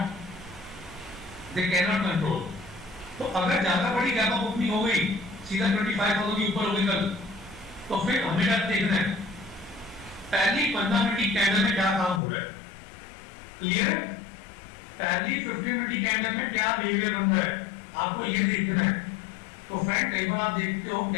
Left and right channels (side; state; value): right; drops out; at 12.2 s